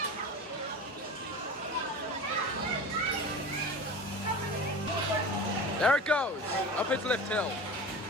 There it goes, up its lift hill.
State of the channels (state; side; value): normal; both; correlation 0.33